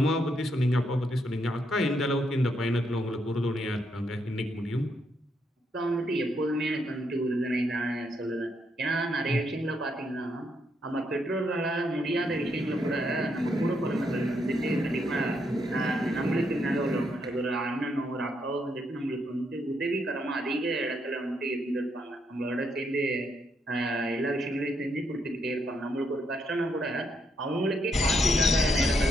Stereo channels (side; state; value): both; normal; correlation 0.77